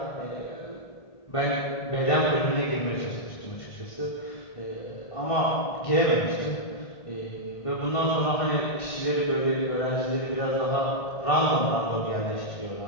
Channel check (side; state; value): right; late; 1.5 ms